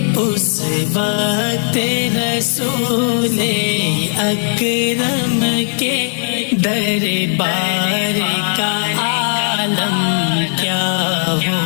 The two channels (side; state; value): right; silent; 67 dB below the other